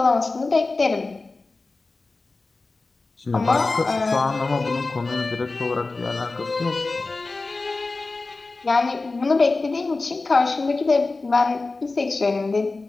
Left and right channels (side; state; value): right; quieter; 3.5 dB